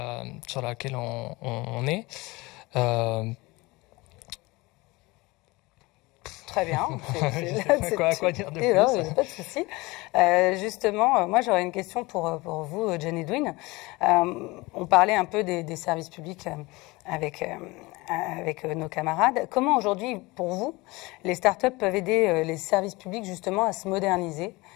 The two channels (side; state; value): right; quieter; 22.7 dB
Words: sur laquelle on est. Très bien. Quoi dire de plus? Non, pas de souci. Justement, moi j'aurais une question pour vous, John Edwin. On parlait un peu des services publics avec nos camarades. Comment aujourd'hui, pour vous, les startups peuvent aider les services publics justement à se moderniser